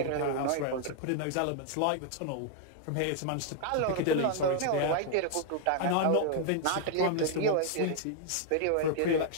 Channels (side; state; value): both; different; correlation 0.00